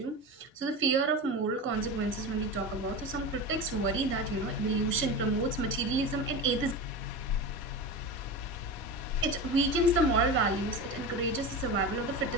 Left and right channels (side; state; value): both; normal; correlation 0.26